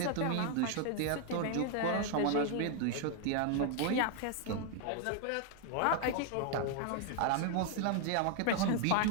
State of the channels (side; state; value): both; different; correlation 0.00